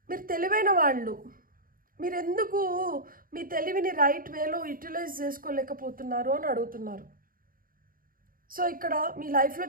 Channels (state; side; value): late; left; 0.41 ms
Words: మీరు తెలివైన వాళ్ళు, మీరు ఎందుకు మీ తెలివిని రైట్ వేలో యూటిలైజ్ చేసుకోలేకపోతున్నారు అని అడుగుతున్నారు. సో ఇక్కడ మీ లైఫ్లో